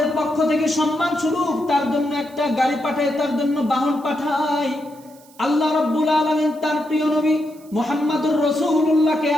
পক্ষ থেকে সম্মান স্বরূপ তার জন্য একটা গাড়ি পাঠাই, তার জন্য বাহন পাঠাই। আল্লাহ রাব্বুল আলামিন তার প্রিয় নবী মুহাম্মদুর রাসূলুল্লাহকে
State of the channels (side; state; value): right; noise; hiss, 26 dB below the sound